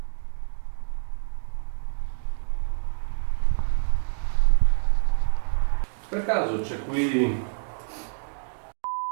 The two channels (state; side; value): silent; left; digital silence